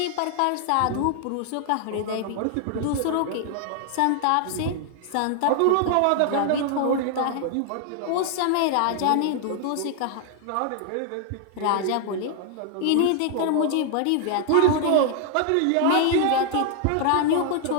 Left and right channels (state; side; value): different; both; correlation 0.00